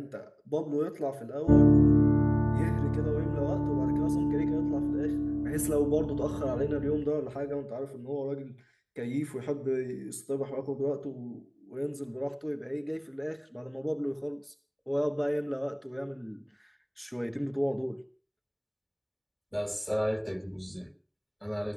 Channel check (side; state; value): both; identical; correlation 1.00